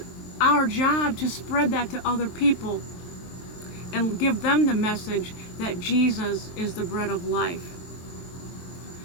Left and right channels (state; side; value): late; right; 23 ms